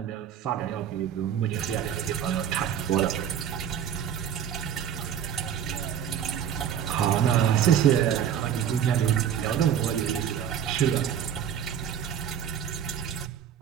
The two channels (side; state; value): left; quieter; 9.1 dB